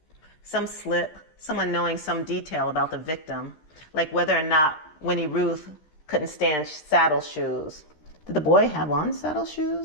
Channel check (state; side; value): late; right; 13 ms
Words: Some slip, someone knowing some detail about the victim, like whether or not Winnie Ruth couldn't stand saddle shoes. Did the boy have on saddle